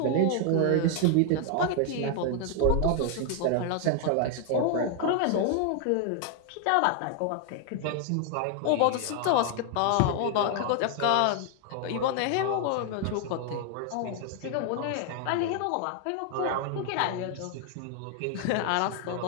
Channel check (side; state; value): both; different; correlation 0.00